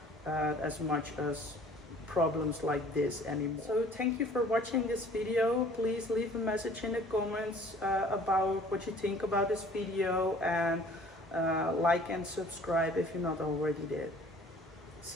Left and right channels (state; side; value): normal; both; correlation 0.52